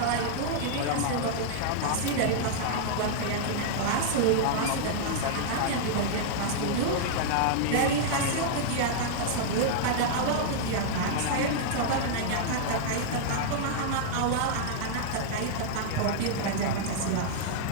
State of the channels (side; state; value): both; different; correlation -0.01